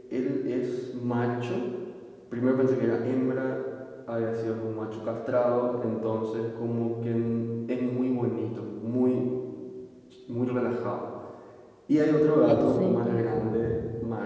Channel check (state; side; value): identical; both; correlation 1.00